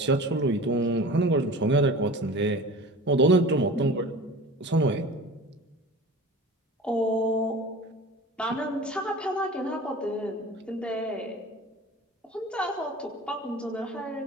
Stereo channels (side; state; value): both; normal; correlation 0.38